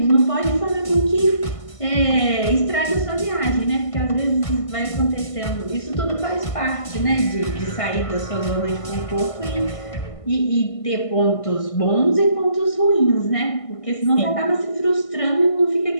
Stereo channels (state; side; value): late; right; 1.6 ms